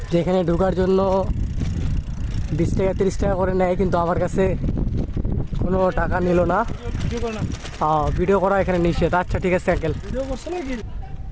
যে এখানে ঢোকার জন্য 20 টাকা 30 টাকা করে নেয়, কিন্তু আমার কাছে কোনো টাকা নিল না। ভিডিও করা এখানে নিষেধ। আচ্ছা ঠিক আছে আঙ্কেল।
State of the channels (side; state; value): both; identical; correlation 1.00